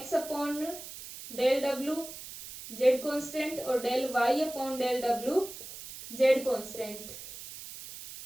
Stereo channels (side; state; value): right; noise; hiss, 12 dB below the sound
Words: अपॉन डेल डब्ल्यू जेड कांस्टेंट और डेल वाई अपॉन डेल डब्ल्यू जेड कांस्टेंट।